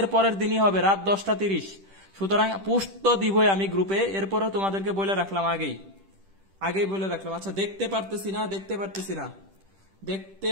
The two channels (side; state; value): left; late; 10 ms